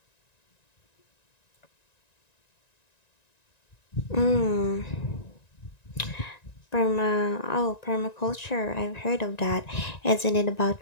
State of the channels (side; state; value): right; late; 1.9 ms